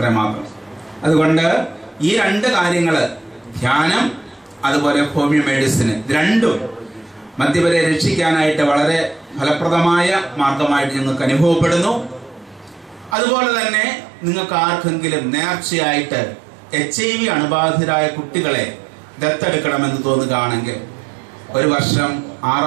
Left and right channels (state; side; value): drops out; left; at 13.2 s